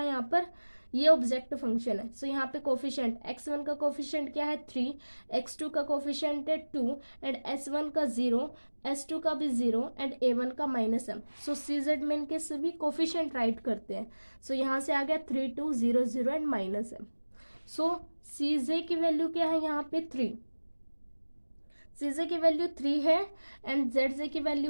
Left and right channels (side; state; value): both; inverted; correlation -1.00